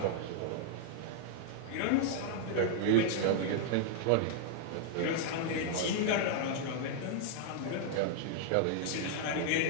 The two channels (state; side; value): different; both; correlation -0.01